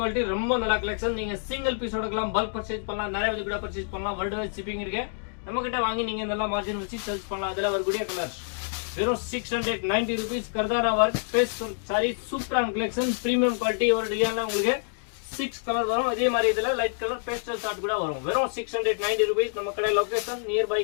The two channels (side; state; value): right; silent; digital silence